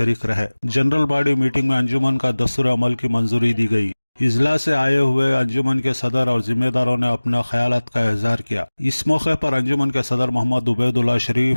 रहे। जनरल बॉडी मीटिंग में अंजुमन का दस्तूर अमल की मंजूरी दी गई। इजलास से आए हुए अंजुमन के सदर और जिम्मेदारों ने अपने ख्यालात का इजहार किया। इस मौके पर अंजुमन के सदर मोहम्मद उबैदुल्लाह शरीफ,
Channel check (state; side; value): inverted; both; correlation -1.00